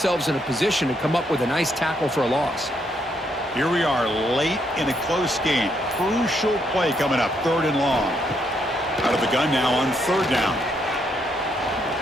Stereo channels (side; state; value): both; normal; correlation 0.75